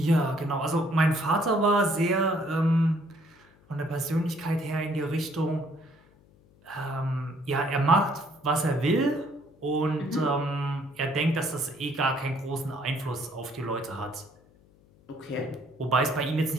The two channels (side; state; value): left; noise; hum, 29 dB below the sound